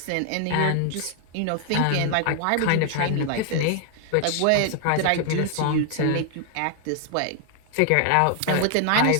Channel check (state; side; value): different; both; correlation 0.00